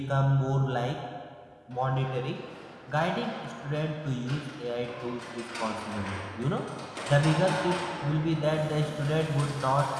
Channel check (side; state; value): both; identical; correlation 1.00